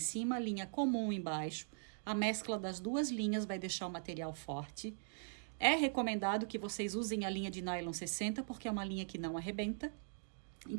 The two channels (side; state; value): left; silent; digital silence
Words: linha comum embaixo. A mescla das duas linhas vai deixar o material forte. É recomendado que vocês usem a linha de nylon 60, porque é uma linha que não arrebenta.